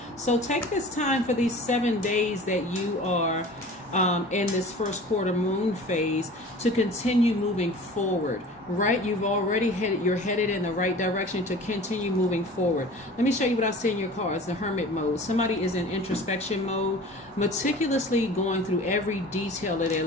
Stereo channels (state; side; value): normal; both; correlation 0.41